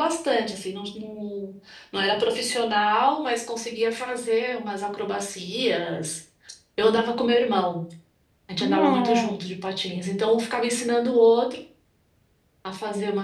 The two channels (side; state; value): both; identical; correlation 1.00